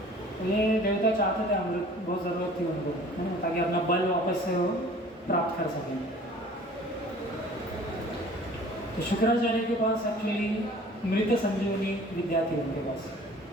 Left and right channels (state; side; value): normal; both; correlation 0.48